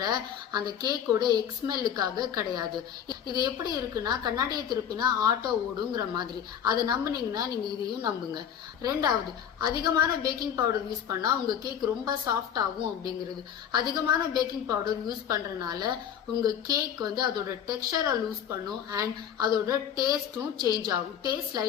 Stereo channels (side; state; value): right; quieter; 9.0 dB